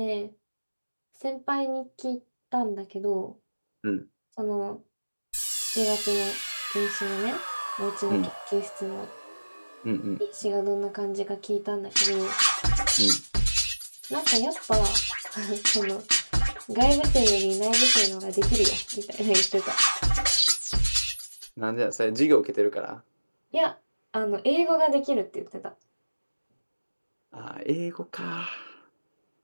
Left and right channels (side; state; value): both; inverted; correlation -1.00